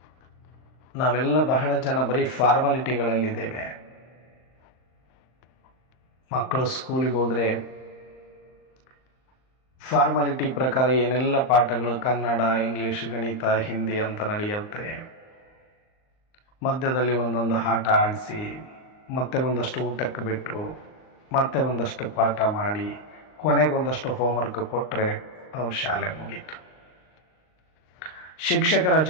ನಾವೆಲ್ಲ ಬಹಳ ಜನ ಬರೀ ಫಾರ್ಮಾಲಿಟಿಗಳಲ್ಲಿದ್ದೇವೆ. ಮಕ್ಕಳು ಸ್ಕೂಲಿಗೆ ಹೋದರೆ ಫಾರ್ಮಾಲಿಟಿ ಪ್ರಕಾರ ಏನೆಲ್ಲ ಪಾಠಗಳು ಕನ್ನಡ, ಇಂಗ್ಲೀಷ್, ಗಣಿತ, ಹಿಂದಿ ಅಂತ ನಡೆಯುತ್ತೆ. ಮಧ್ಯದಲ್ಲಿ ಒಂದೊಂದು ಆಟ ಆಡಿಸಿ, ಮತ್ತೆ ಒಂದಷ್ಟು ಊಟಕ್ಕೆ ಬಿಟ್ಟು, ಮತ್ತೆ ಒಂದಷ್ಟು ಪಾಠ ಮಾಡಿ, ಕೊನೆಗೊಂದಷ್ಟು ಹೋಮ್ವರ್ಕ್ ಕೊಟ್ಟರೆ ಅವ್ರ ಶಾಲೆ ಮುಗೀತು. ಶಿಕ್ಷಕರ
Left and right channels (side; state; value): right; late; 38 ms